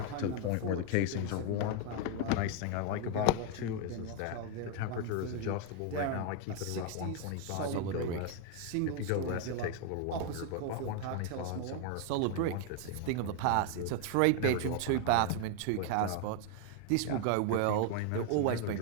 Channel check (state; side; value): different; both; correlation 0.00